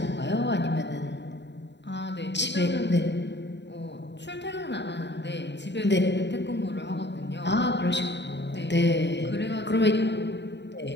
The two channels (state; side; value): late; right; 0.51 ms